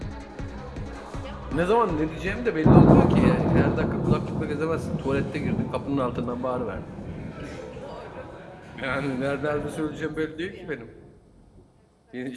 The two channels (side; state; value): both; identical; correlation 1.00